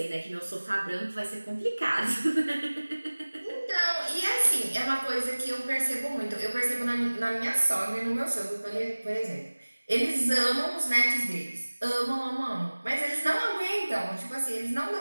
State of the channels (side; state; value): both; inverted; correlation -1.00